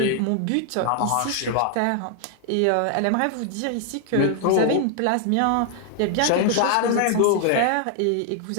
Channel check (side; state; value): both; different; correlation 0.00